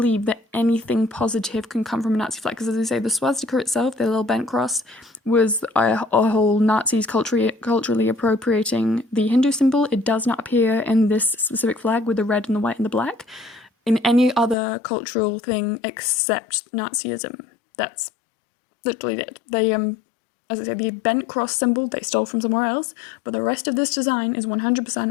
that anything positive can come from a Nazi flag. Because as I say, the swastika itself, the little bent cross, was a whole Nazis culturally appropriating the Hindu symbol. It does not appear in this specific flag with the red and the white and the black in any other cultural thing except Nazism. That's literally it. They as I say, the bent cross symbol they stole from somewhere else, but the rest of this design is 100%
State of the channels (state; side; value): drops out; right; at 14.6 s